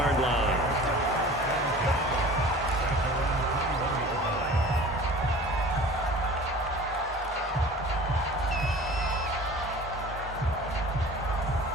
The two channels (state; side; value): normal; both; correlation 0.42